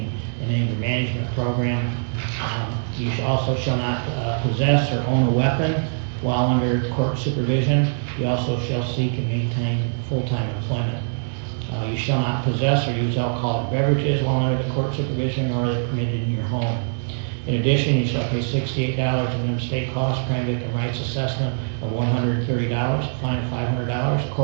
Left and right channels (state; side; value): silent; left; digital silence